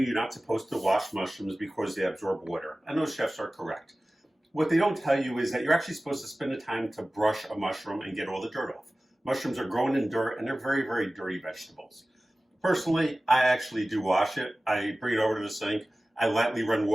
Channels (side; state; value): both; normal; correlation 0.97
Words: you're not supposed to wash mushrooms because they absorb water, and those chefs are correct. What they don't tell you is that you're actually supposed to spend the time to brush a mushroom and get all the dirt off. Mushrooms are grown in dirt and they're very, very dirty vegetables. Personally, I actually do wash it. I bring it over to the sink. I lightly run